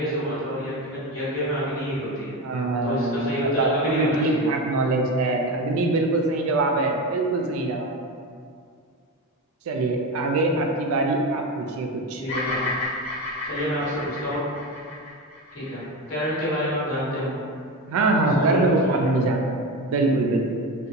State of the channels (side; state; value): both; normal; correlation 0.20